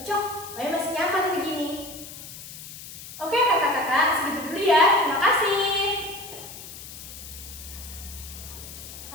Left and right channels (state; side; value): noise; left; hiss, 13 dB below the sound